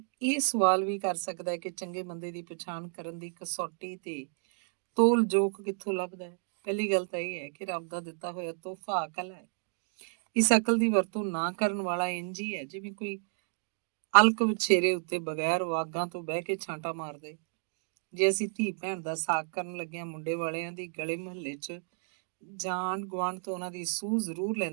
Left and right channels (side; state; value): left; silent; 57 dB below the other